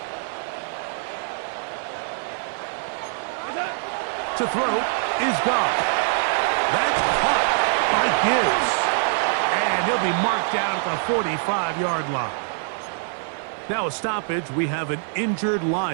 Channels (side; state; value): left; silent; 55 dB below the other